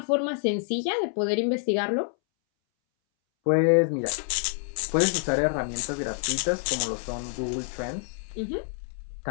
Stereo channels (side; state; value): right; silent; 60 dB below the other